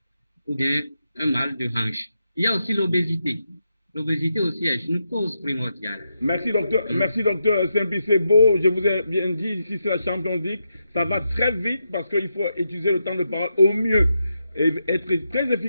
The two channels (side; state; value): both; inverted; correlation -0.85